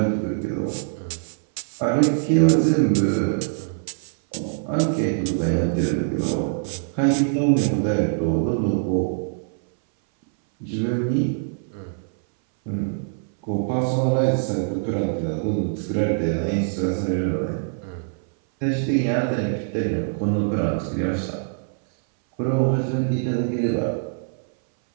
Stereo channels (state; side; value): silent; left; 61 dB below the other